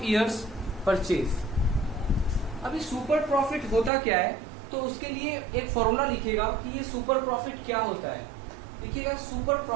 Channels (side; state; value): left; drops out; at 3.9 s